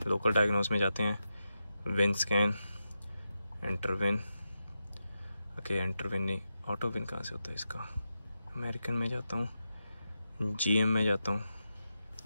लोकल डायग्नोस में जाते हैं, win scan, enter win. Okay, enter win नहीं, ऑटो विन कहाँ से होता है इसका? अमेरिकन में जाता हूँ, GM में जाता हूँ।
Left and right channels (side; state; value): both; inverted; correlation -0.89